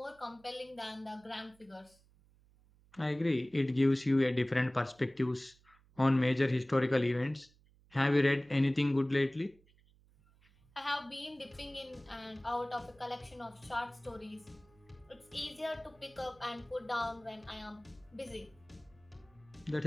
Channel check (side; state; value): right; noise; hum, 29 dB below the sound